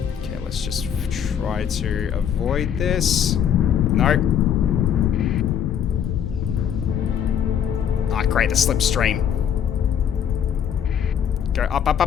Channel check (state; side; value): quieter; right; 8.7 dB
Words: Okay, let's just try to avoid this. Nope. Ah, great, the slipstream. Go up, up,